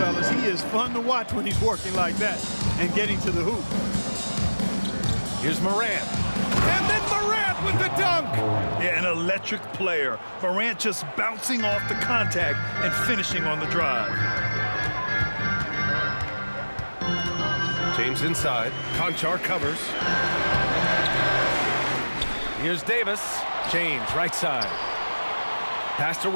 he is fun to watch when he's working like that and getting to the hoop. Here's Morant. And then Morant with the dunk. Yeah, an electric player. Morant just bouncing off the contact and finishing on the drive. James inside. Conchar covers. Here's Davis. James, right side. Pass to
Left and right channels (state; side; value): inverted; both; correlation -1.00